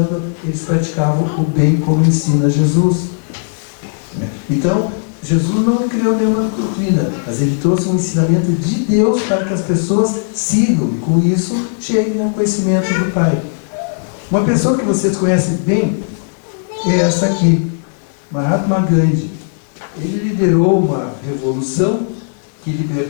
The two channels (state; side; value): silent; right; digital silence